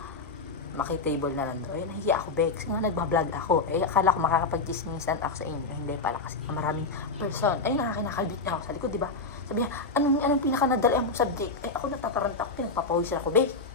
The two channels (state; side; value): quieter; right; 3.8 dB